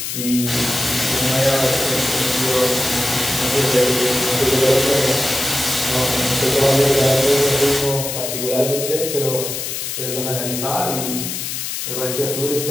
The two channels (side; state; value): left; noise; hiss, 4 dB below the sound